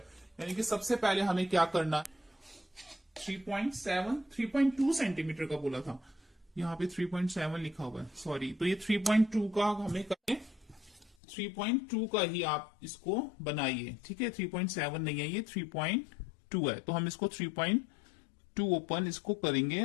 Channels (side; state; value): right; drops out; at 11.2 s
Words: यानी कि सबसे पहले हमें क्या करना है, 3.2 सेंटीमीटर का बोला था, यहाँ पे 3.7 लिखा हुआ है, सॉरी। तो ये 3.2 का हमें करें, 3.2 का ही आप इसको बनाइए, ठीक है। 3.7 नहीं है, ये 3.2 है। तो हम इसको 3.2 ओपन इसको करेंगे